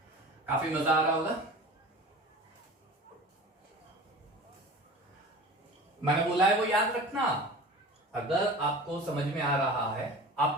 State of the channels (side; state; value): both; normal; correlation 0.37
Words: काफी मजा आ रहा होगा मैंने बोला है वो याद रखना अगर आपको समझ में आ रहा है